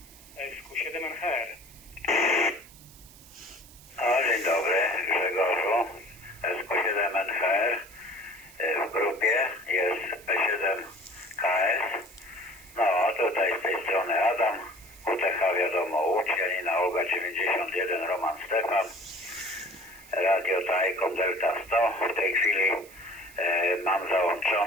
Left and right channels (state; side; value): noise; right; hiss, 22 dB below the sound